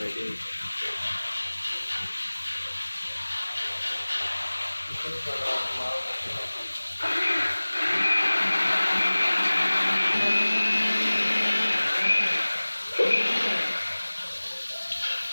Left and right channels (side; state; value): both; inverted; correlation -1.00